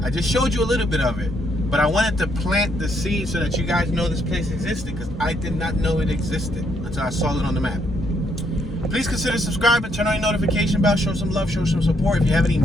I just showed you a little bit of it. But I wanted to plant the seed so that you guys know this place existed, because I did not know it existed until I saw it on the map. Please consider subscribing, turn on your notification bell, show some love, show some support. If you have any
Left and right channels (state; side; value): normal; both; correlation 0.72